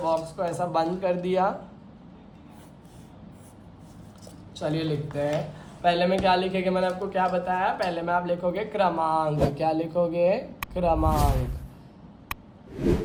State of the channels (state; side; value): identical; both; correlation 1.00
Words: को ऐसा बंद कर दिया। चलिए लिखते हैं। पहले में क्या लिखेंगे, मैंने आपको क्या बताया, पहले में आप लिखोगे क्रमांक। क्या लिखोगे, क्रमांक।